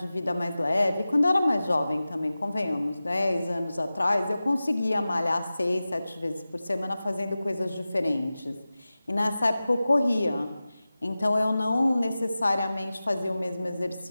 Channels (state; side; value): inverted; both; correlation -0.96